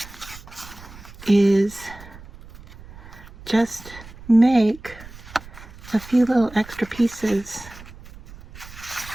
is just make a few little extra pieces.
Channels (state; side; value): noise; right; rumble, 18 dB below the sound